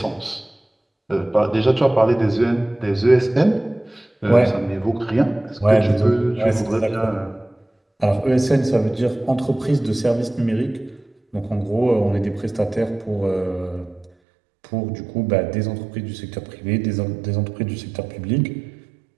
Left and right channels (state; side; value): drops out; left; at 14.1 s